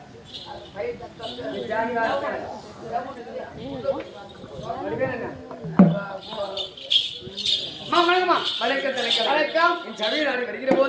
என் சபையில் நாடு வருகிற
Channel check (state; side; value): identical; both; correlation 1.00